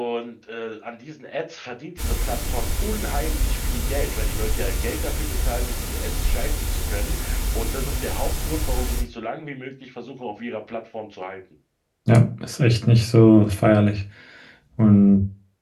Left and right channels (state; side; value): identical; both; correlation 1.00